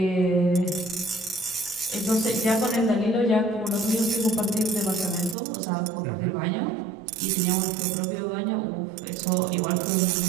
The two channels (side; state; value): left; drops out; at 5.4 s